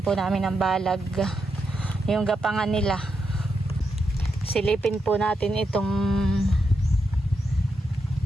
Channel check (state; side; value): normal; both; correlation 0.84